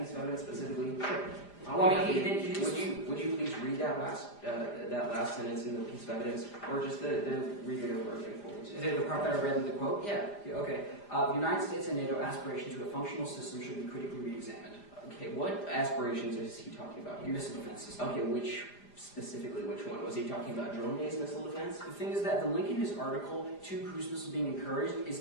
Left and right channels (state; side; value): late; right; 4.9 ms